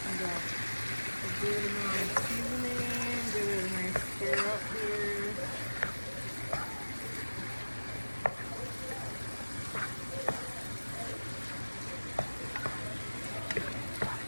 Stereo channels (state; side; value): inverted; both; correlation -1.00